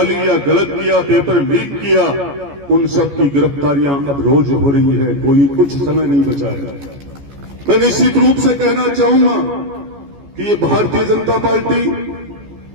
या गलत किया, पेपर लीक किया, उन सब की गिरफ्तारियां अब रोज हो रही है, कोई कुछ समय नहीं बचा है। मैं निश्चित रूप से कहना चाहूंगा कि ये भारतीय जनता पार्टी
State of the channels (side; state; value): left; late; 14 ms